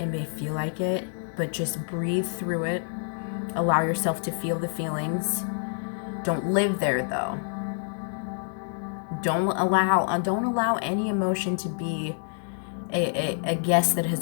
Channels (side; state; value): right; silent; 60 dB below the other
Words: may feel like it, but just breathe through it. Allow yourself to feel the feelings. Don't live there, though. Don't allow any emotion to be a guest that